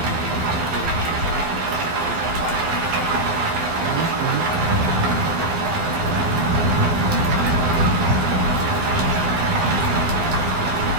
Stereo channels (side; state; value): left; late; 12 ms